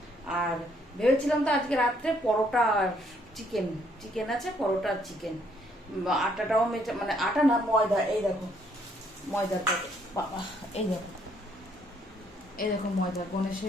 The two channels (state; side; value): normal; both; correlation 0.68